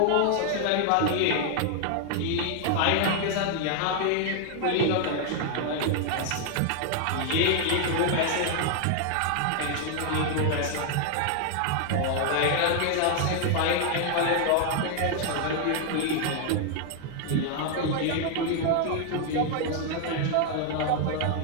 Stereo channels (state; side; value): different; both; correlation 0.00